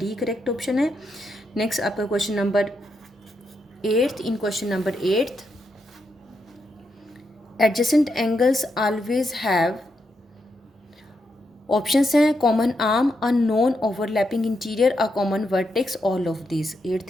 करेक्ट ऑप्शन है. Next आपका question number 8th. In question number 8th, adjacent angles always have. Options हैं common arm, a non overlapping interior, a common vertex, all of this.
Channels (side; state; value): both; normal; correlation 0.82